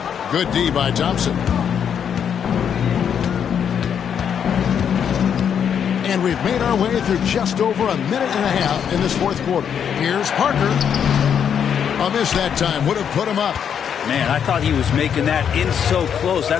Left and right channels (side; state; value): right; quieter; 8.1 dB